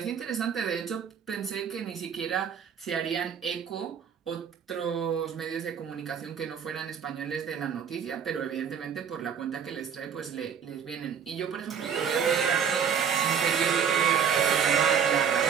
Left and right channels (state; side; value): quieter; left; 7.4 dB